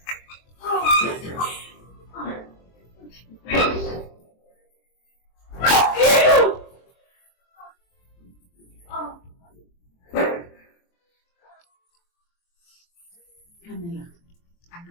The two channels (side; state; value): right; late; 23 ms